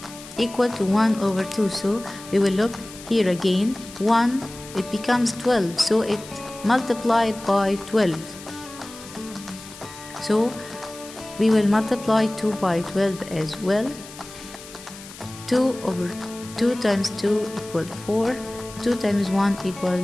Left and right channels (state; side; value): noise; left; hiss, 16 dB below the sound